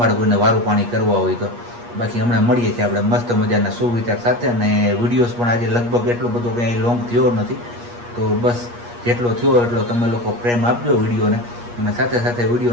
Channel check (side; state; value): left; late; 8.4 ms